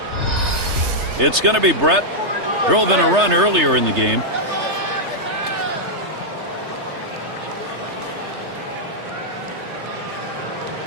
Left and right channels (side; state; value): left; late; 3.3 ms